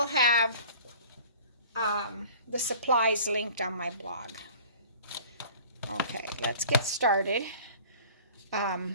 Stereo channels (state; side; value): inverted; both; correlation -0.45